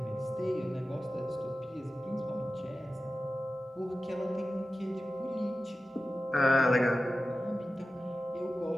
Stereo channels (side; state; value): both; normal; correlation 0.94